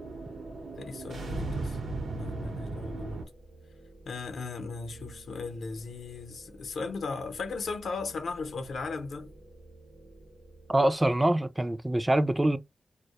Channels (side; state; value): both; normal; correlation 0.93